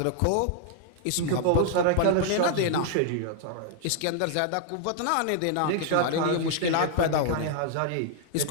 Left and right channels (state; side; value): different; both; correlation 0.00